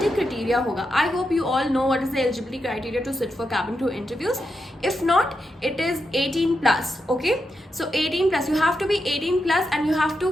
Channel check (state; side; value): normal; both; correlation 0.86